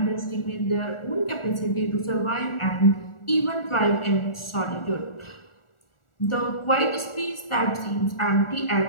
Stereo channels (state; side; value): late; right; 1.4 ms